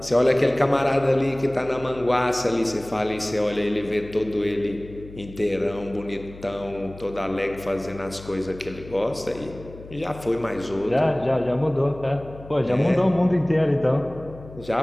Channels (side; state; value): left; noise; hum, 17 dB below the sound